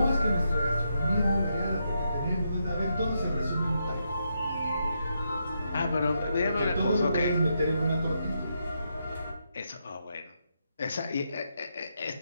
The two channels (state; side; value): inverted; both; correlation -0.81